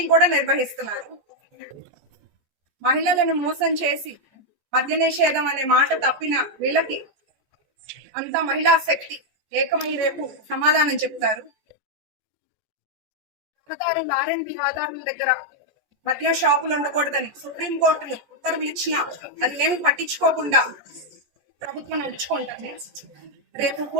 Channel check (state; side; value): late; left; 14 ms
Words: కూడా నిర్వహిస్తున్నారు. మహిళలను మోసం చేసి మద్య నిషేధం అనే మాట తప్పిన వీళ్ళకి అంతా మహిళా శక్తి ఏకమై రేపు సమాధానం చెప్తారు. ఆర్ఎండ్బి ఆధారుల దగ్గర మద్య షాపులు ఉండకూడదని సుప్రీంకోర్టులు ఉత్తర్వులు ఇచ్చినా అది ఏమి పట్టించుకోకుండా ప్రభుత్వం నడుచుకుంటుంది. రేపు